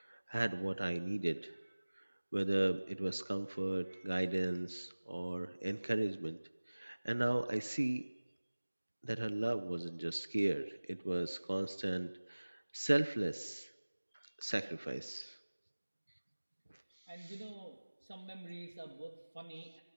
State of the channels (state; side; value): inverted; both; correlation -1.00